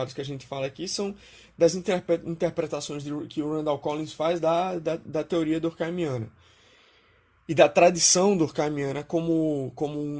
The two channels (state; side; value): identical; both; correlation 1.00